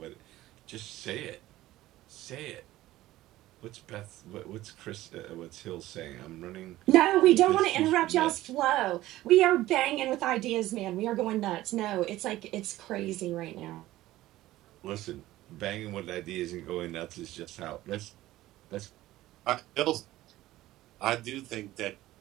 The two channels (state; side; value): quieter; left; 16.0 dB